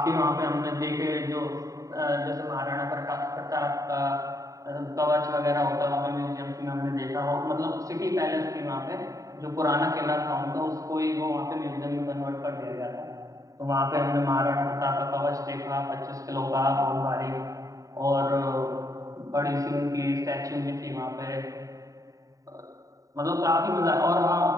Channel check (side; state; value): left; late; 0.16 ms